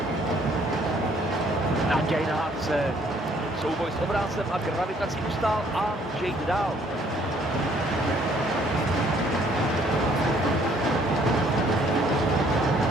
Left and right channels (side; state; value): both; normal; correlation 0.63